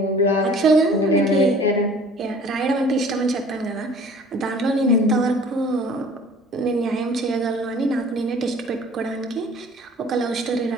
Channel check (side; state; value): both; normal; correlation 0.49